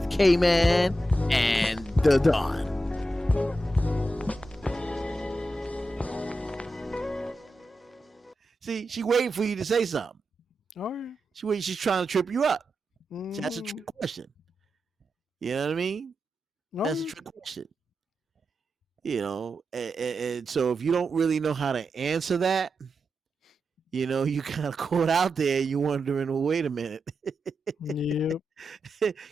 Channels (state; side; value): normal; both; correlation 0.89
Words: K-Man and the Don. See, she waiting for you to say something. All right. She's trying to trip you up. Mm-hmm. That's a trick question. You know what I mean? That's a trick question. You know, and so if you don't really know how to answer that, you know, you kind of caught out there. You wondering, well, wait a minute. Yep.